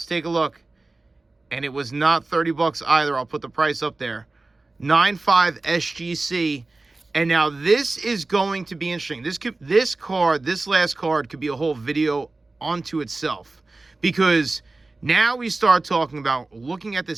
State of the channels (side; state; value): left; quieter; 3.3 dB